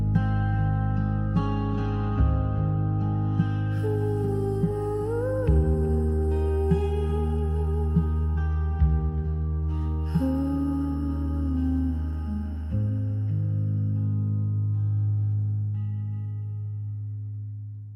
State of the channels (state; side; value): identical; both; correlation 1.00